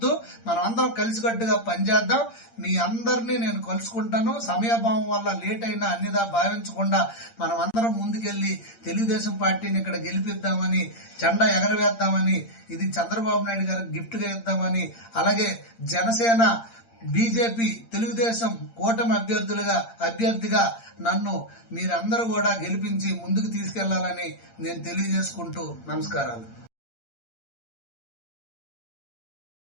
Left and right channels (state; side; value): late; right; 8.7 ms